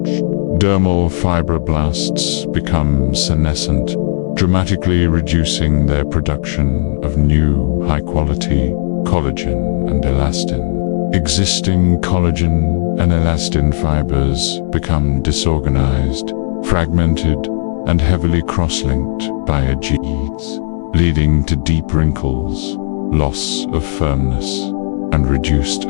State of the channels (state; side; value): silent; right; digital silence